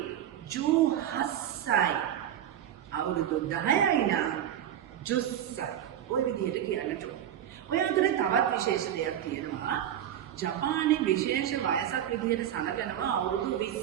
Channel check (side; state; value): left; quieter; 10.7 dB